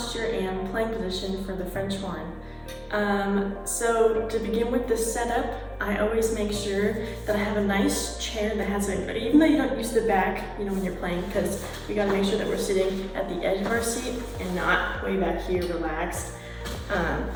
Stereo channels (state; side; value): identical; both; correlation 1.00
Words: and playing position for the French horn. So to begin with the setup, I always make sure that I have a nice chair that has even though you don't use the back, when you're playing, because we gotta make sure that we're sitting at the edge of our seat and not way back here relaxed.